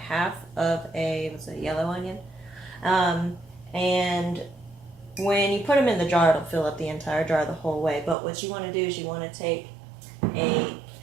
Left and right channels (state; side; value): drops out; left; at 8.2 s